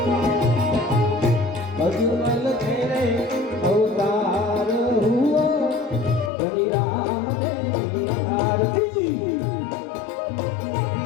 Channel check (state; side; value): drops out; right; at 6.3 s